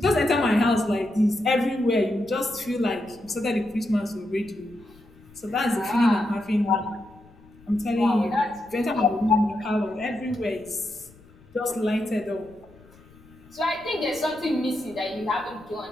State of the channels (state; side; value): noise; left; rumble, 25 dB below the sound